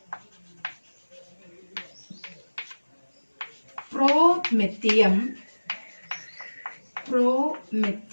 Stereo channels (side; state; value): both; inverted; correlation -1.00